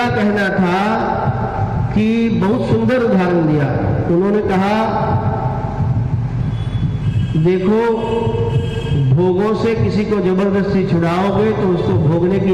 कहना था कि बहुत सुंदर उदाहरण दिया। उन्होंने कहा देखो, भोगों से किसी को जबरदस्ती छुड़ाओगे तो उसको भोगने की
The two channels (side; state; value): both; identical; correlation 1.00